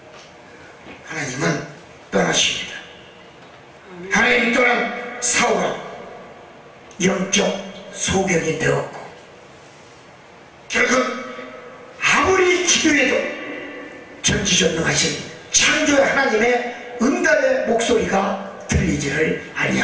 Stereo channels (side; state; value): both; identical; correlation 1.00